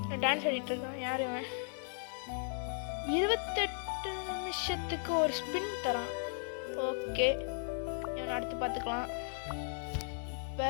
டான்ஸ் ஆடிட்டு இருக்கான். யார் இவன்? 28 நிமிஷத்துக்கு ஒரு ஸ்பின் தரான். ஓகே, இவன் அடுத்து பார்த்துக்கலாம். இப்போ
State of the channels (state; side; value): silent; right; 54 dB below the other